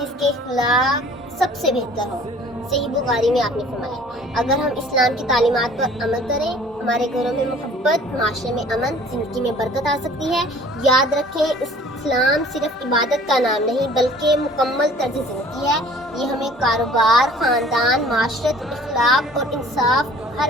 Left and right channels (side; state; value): both; normal; correlation 0.51